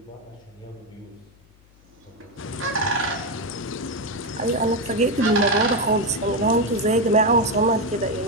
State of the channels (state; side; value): noise; left; hum, 30 dB below the sound